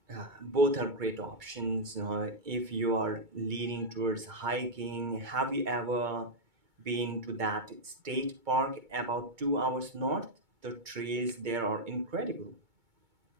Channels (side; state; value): left; late; 2.2 ms